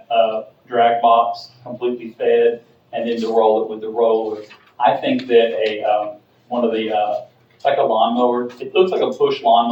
drag box completely fed, and then to roll it with the roller. I think that one of the, like a lawnmower, it looks like a push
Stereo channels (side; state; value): both; identical; correlation 1.00